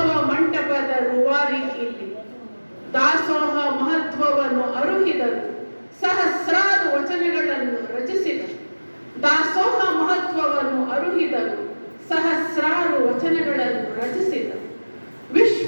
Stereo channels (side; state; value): both; inverted; correlation -1.00